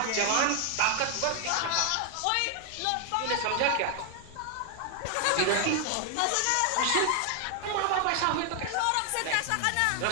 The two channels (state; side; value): different; both; correlation 0.00